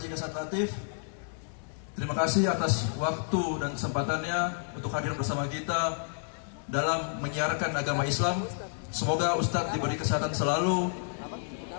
Dasat Latif, terima kasih atas waktu dan kesempatannya untuk hadir bersama kita dalam menyiarkan agama Islam. Semoga Ustadz diberi kesehatan selalu,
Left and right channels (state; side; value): silent; right; 58 dB below the other